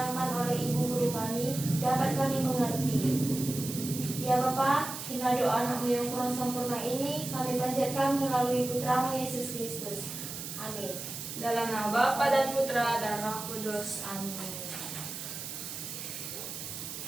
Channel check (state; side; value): noise; right; hiss, 8 dB below the sound